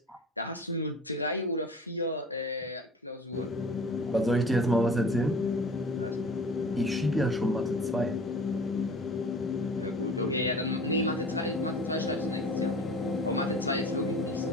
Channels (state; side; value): normal; both; correlation 0.42